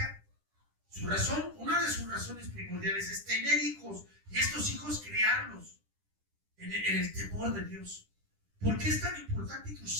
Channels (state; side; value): late; left; 10 ms